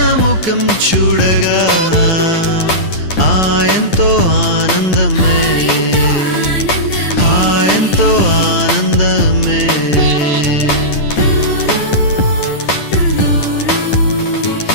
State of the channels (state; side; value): late; right; 10 ms